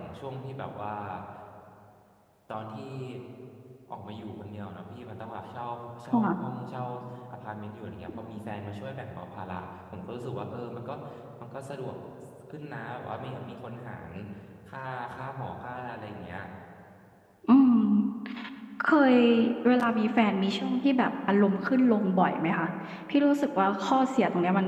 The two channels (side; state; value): both; identical; correlation 1.00